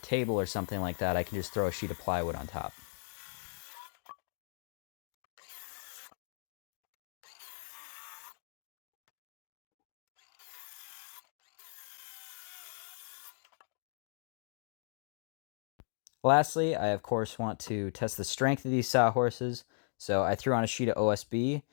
table or something like that, I can just throw a sheet of plywood on top. Lastly, I of course want to test the strength of these sawhorses, so I threw on a sheet of OSB,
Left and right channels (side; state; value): right; silent; digital silence